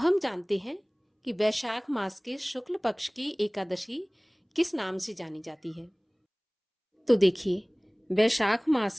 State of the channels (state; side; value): identical; both; correlation 1.00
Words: जानते हैं कि वैशाख मास के शुक्ल पक्ष की एकादशी किस नाम से जानी जाती है। तो देखिए, वैशाख मास